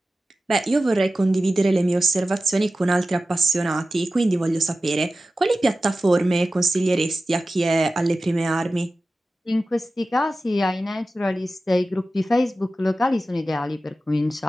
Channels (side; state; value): both; normal; correlation 0.94